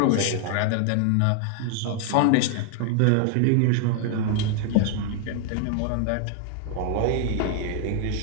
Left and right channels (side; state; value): both; different; correlation 0.00